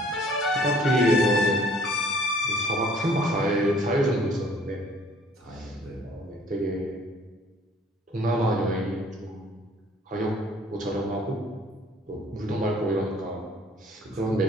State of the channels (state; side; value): normal; both; correlation 0.56